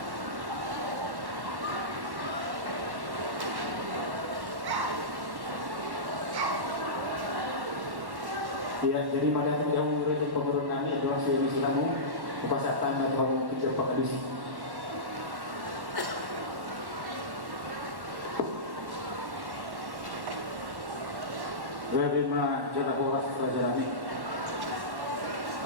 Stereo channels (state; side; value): late; left; 1.1 ms